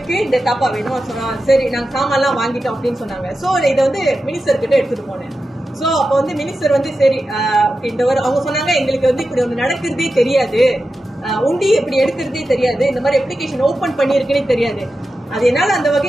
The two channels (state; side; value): normal; both; correlation 0.91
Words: இந்த தாப்பா வேணும் சொன்னா. சரி நாங்க சாமான்லாம் வாங்கிட்டோம் அப்படின்னு சொன்னாங்க. சோ இதை வந்து மினிஸ்டர் கிட்ட எடுத்துட்டு போனேன். சோ அப்ப வந்து மினிஸ்டர் வந்து சரி இந்த அவங்க சொன்னாங்க, எங்களுக்கு வந்து இப்படி ஒண்ணு நடக்கிறதே தெரியாது, உண்டி இப்படி எடுக்கிறதே தெரியாது, இந்த மாதிரி அப்ளிகேஷன் ஓபன் பண்ணிருக்குன்னே தெரியாது. அது என்னால அந்த